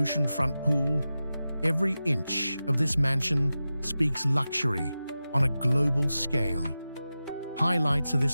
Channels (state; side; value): inverted; both; correlation -0.94